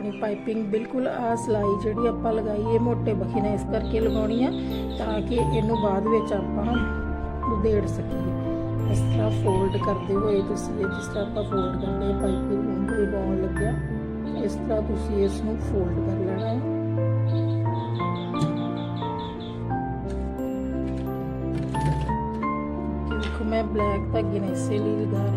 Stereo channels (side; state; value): both; identical; correlation 1.00